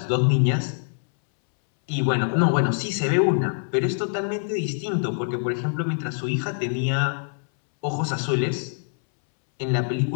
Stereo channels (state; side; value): silent; right; 62 dB below the other